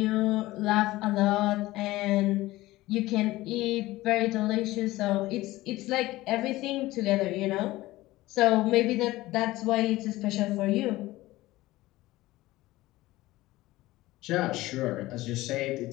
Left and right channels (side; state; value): right; quieter; 18.0 dB